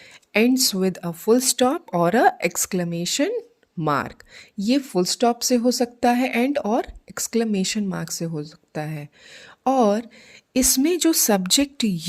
ends with a full stop और अ एक्सक्लेमेशन मार्क। ये फुल स्टॉप से हो सकता है एंड, और एक्सक्लेमेशन मार्क से हो सकता है। और इसमें जो सब्जेक्ट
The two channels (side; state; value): both; identical; correlation 1.00